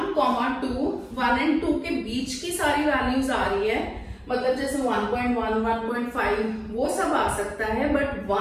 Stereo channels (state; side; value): identical; both; correlation 1.00